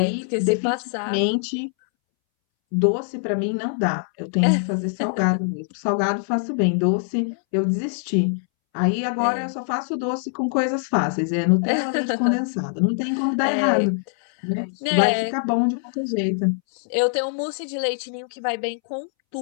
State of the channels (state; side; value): silent; right; 63 dB below the other